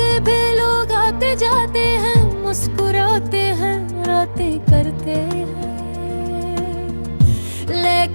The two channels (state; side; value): inverted; both; correlation -1.00